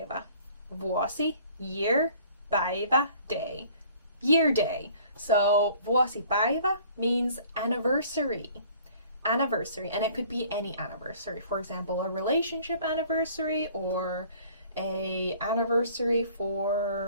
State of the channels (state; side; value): inverted; both; correlation -0.53